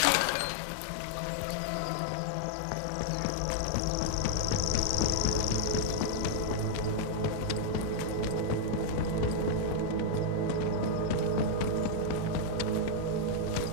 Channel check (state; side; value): different; both; correlation -0.01